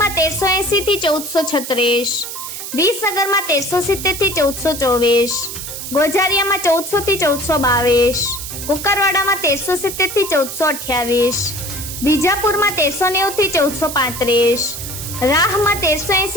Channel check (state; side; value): noise; right; hiss, 8 dB below the sound